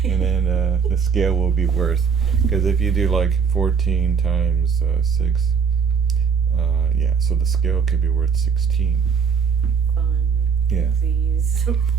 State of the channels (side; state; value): left; quieter; 6.3 dB